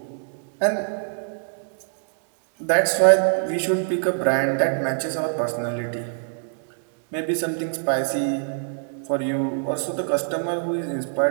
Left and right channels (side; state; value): left; silent; digital silence